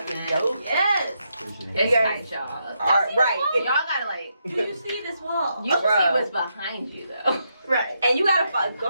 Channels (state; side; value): inverted; both; correlation -0.81